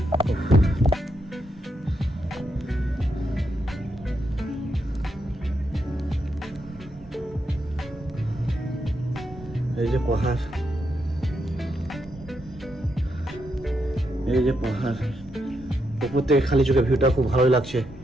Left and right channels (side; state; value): both; normal; correlation 0.81